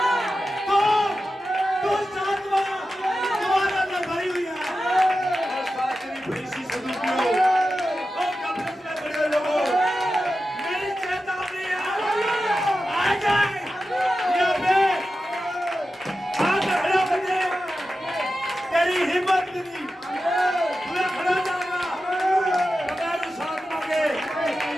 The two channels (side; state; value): both; normal; correlation 0.92